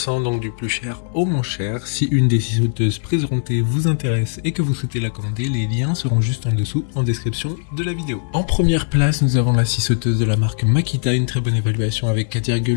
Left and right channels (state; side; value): silent; right; digital silence